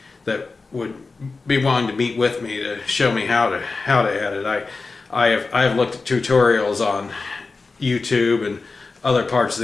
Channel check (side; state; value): right; quieter; 4.0 dB